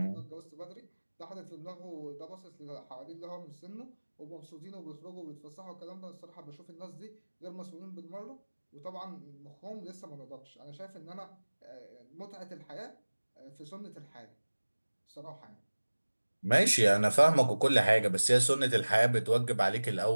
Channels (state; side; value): inverted; both; correlation -1.00